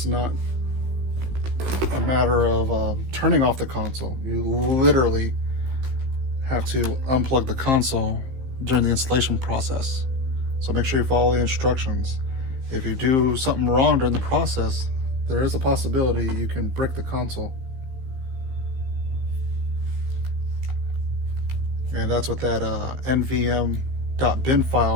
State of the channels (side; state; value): left; late; 16 ms